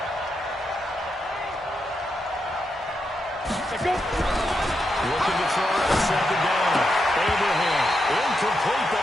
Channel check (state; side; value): normal; both; correlation 0.84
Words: Let's go. Looking to throw on second down. Abraham, incomplete, but